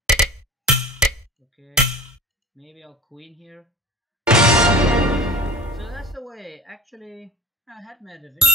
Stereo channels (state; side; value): normal; both; correlation 0.39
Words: Okay. Maybe I'll queen here. So that's the way. Actually, I had my revenge.